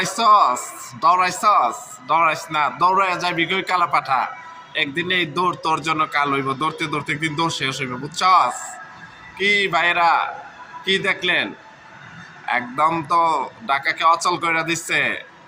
ডরাইস না, দৌড়ায় যাবি কই কালা পাঠা। একদিন এই দৌড় তোর জন্য কাল হইব, দৌড়তে দৌড়তে একদিন দৌড় শেষ হইব, বুঝছস? কি ভাইরা, কি দেখলেন? একদম তো ঢাকাকে অচল করে দিচ্ছে।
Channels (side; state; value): both; identical; correlation 1.00